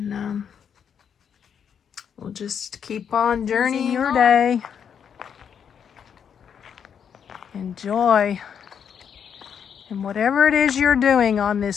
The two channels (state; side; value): quieter; right; 7.7 dB